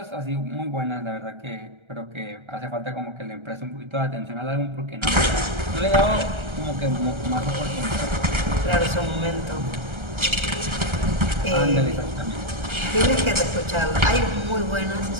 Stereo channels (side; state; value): left; late; 1.3 ms